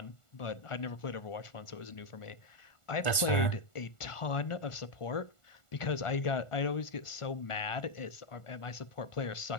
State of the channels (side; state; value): right; late; 1.4 ms